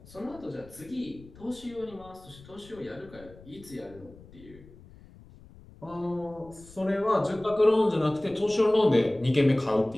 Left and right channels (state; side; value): noise; left; rumble, 22 dB below the sound